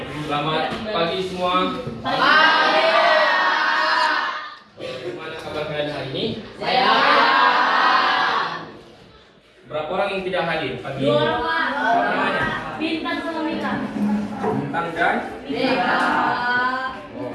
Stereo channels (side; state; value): both; identical; correlation 1.00